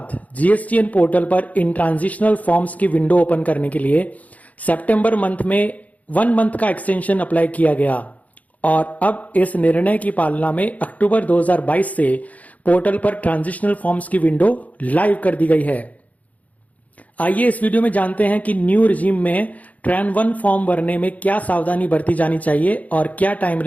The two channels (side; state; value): right; late; 0.072 ms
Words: जीएसटीएन पोर्टल पर इन ट्रांजिशनल फॉर्म्स की विंडो ओपन करने के लिए सितंबर मंथ में 1 मंथ का एक्सटेंशन अप्लाई किया गया और अब इस निर्णय की पालना में अक्टूबर 2022 से पोर्टल पर ट्रांजिशनल फॉर्म्स की विंडो लाइव कर दी गई है। आइए इस वीडियो में जानते हैं कि न्यू रिजीम में ट्रान 1 फॉर्म भरने में क्या सावधानी बरती जानी चाहिए और क्या टाइम